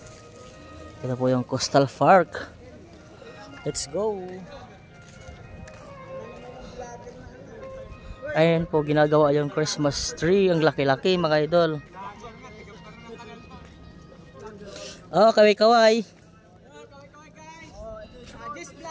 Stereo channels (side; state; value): both; identical; correlation 1.00